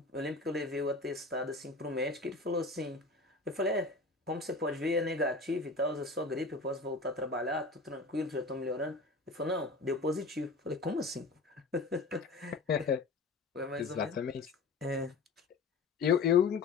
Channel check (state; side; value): quieter; right; 3.7 dB